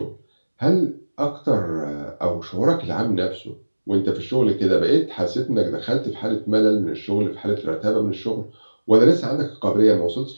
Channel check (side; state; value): both; inverted; correlation -1.00